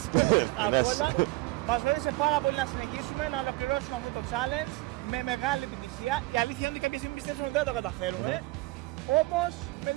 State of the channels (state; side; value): quieter; left; 21.4 dB